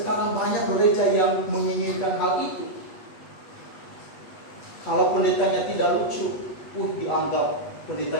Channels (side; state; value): right; late; 8.2 ms